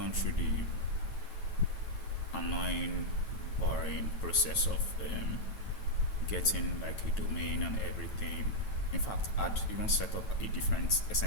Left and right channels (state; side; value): late; right; 9.1 ms